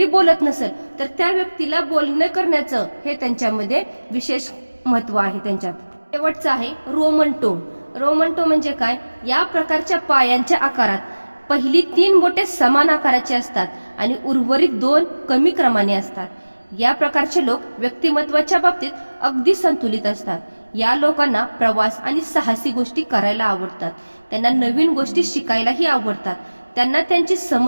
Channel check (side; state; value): both; inverted; correlation -1.00